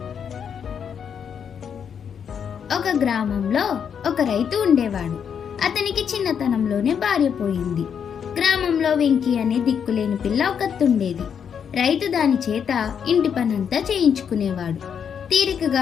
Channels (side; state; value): right; quieter; 7.6 dB